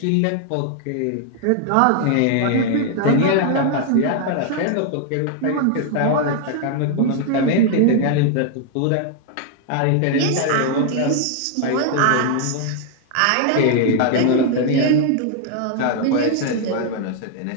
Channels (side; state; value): both; different; correlation 0.00